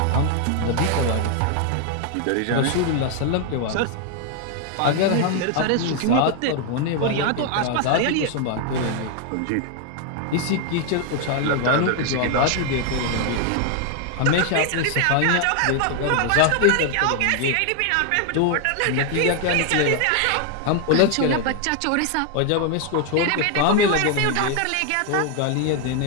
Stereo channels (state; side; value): different; both; correlation 0.00